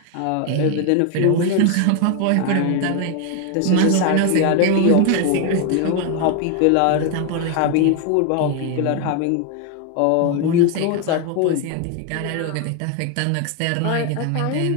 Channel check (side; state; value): both; different; correlation 0.01